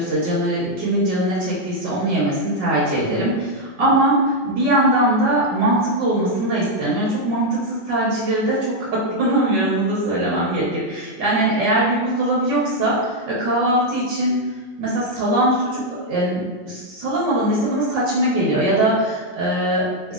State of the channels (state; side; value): normal; both; correlation 0.00